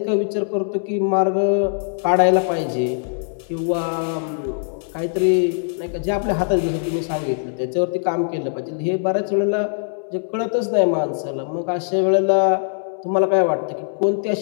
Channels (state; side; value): silent; right; digital silence